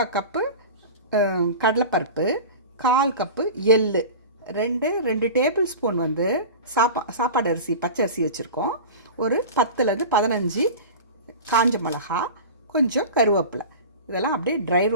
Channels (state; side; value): inverted; both; correlation -0.33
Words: கப்பு கடலைப்பருப்பு, 1/4 கப்பு எள்ளு, 2 டேபிள் ஸ்பூன் வந்து சாப்பாடு அரிசி பச்சரிசி வச்சுருக்கோம். ஒரு 10லேருந்து 15 காஞ்ச மிளகா, கொஞ்சம் கருவேப்பிலை, இதெல்லாம் அப்படியே ட்ரை